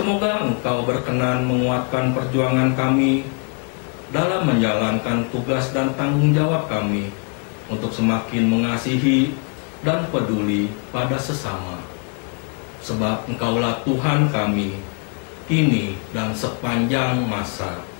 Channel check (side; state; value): right; quieter; 37.1 dB